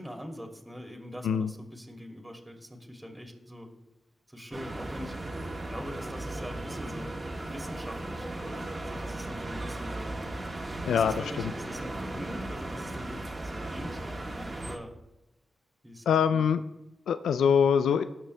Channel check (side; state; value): right; quieter; 4.6 dB